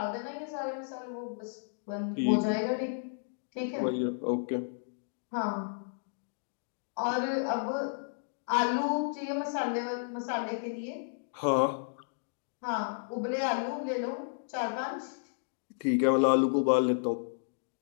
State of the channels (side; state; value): right; silent; digital silence